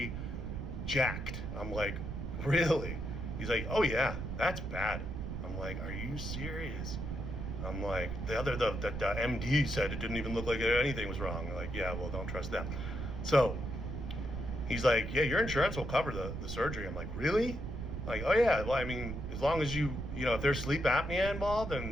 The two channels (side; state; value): right; noise; rumble, 5 dB below the sound